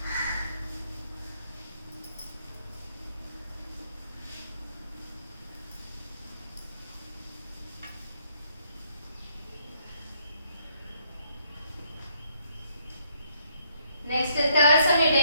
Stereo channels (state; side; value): inverted; both; correlation -0.70